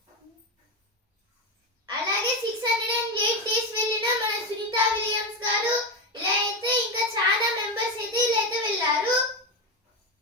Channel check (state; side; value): normal; both; correlation 0.13